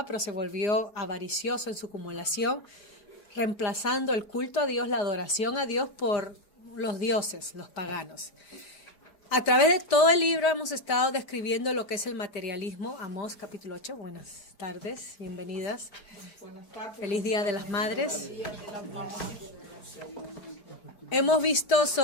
pero se volvió avaricioso en su acumulación, reemplazando el culto a Dios, la adoración a Dios por los dioses, los paganos. A través de todo el libro hemos estado describiendo lo que es el materialismo. Amós capítulo 8, buenas tardes, bienvenidas. Buenas tardes. Feliz Día de las Madres. Hemos visto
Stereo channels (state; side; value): late; right; 5.0 ms